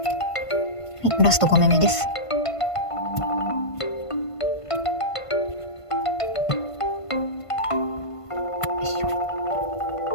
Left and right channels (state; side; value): late; right; 1.5 ms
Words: い、ラスト5目目です。